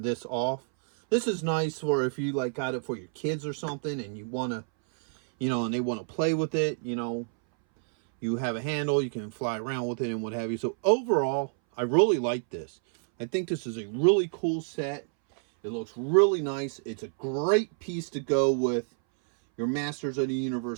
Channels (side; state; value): left; silent; 59 dB below the other